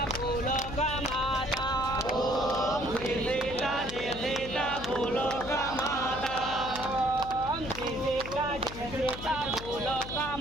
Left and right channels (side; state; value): left; noise; hum, 11 dB below the sound